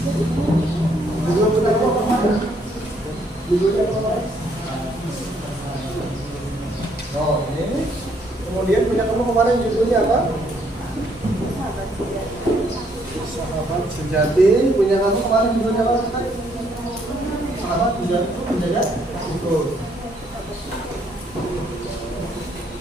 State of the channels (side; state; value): both; normal; correlation 0.69